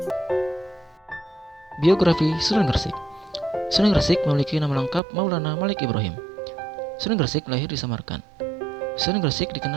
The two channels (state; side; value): drops out; left; at 5.0 s